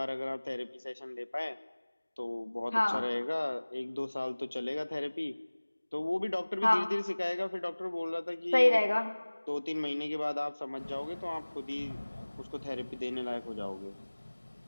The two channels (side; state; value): both; inverted; correlation -1.00